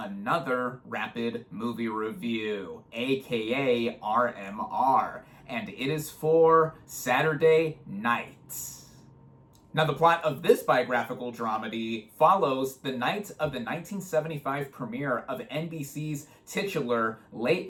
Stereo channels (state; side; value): identical; both; correlation 1.00